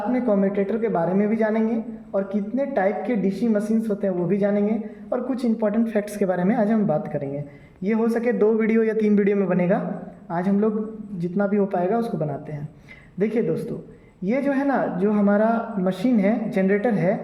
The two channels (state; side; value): identical; both; correlation 1.00